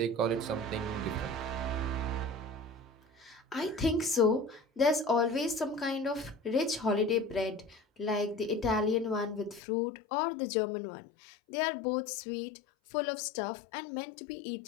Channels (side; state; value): right; drops out; at 9.6 s